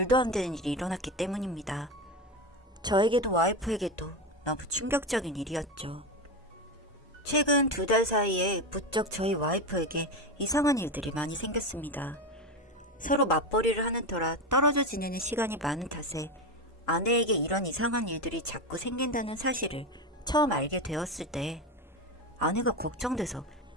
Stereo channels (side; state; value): both; normal; correlation 0.17